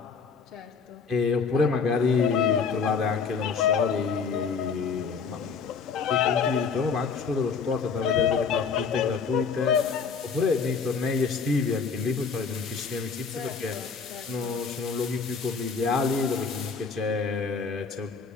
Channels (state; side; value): quieter; right; 5.4 dB